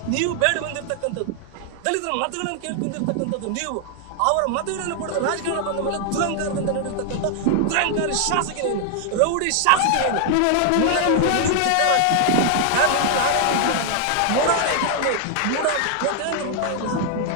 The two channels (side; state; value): both; different; correlation 0.00